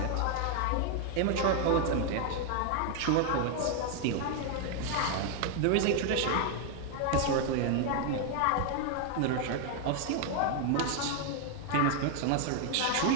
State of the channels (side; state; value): both; different; correlation 0.00